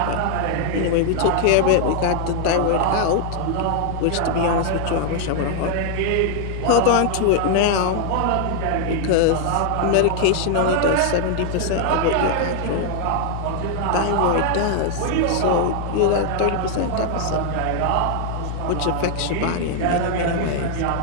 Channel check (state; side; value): different; both; correlation 0.00